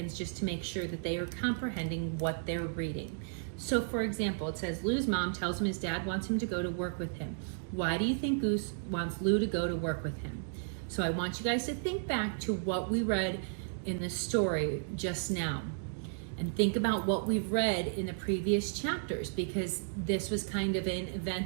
just to make sure that they are comprehending what they're reading. So for example, it says, Lou's mom tells him his dad wants him to go to work with him. Why do you think Goose wants Lou to go to work with him? So I want you guys to think back to what we read in the story just now. And think about what we've read in the previous chapters, because this was kind of an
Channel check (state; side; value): silent; left; digital silence